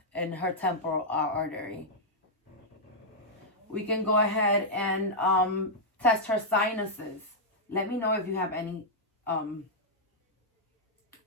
in her temporal artery. We can go ahead and test her sinuses. Let me know if you have any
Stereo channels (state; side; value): normal; both; correlation -0.07